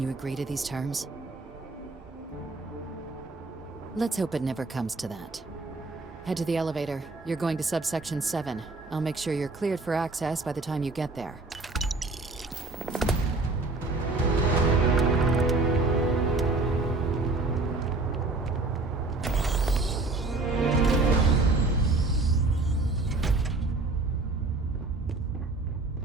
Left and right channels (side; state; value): left; quieter; 3.4 dB